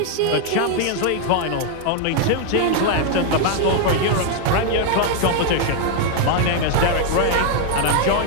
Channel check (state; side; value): different; both; correlation 0.00